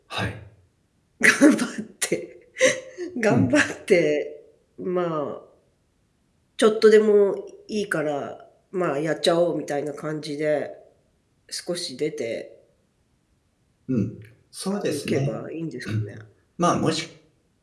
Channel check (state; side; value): identical; both; correlation 1.00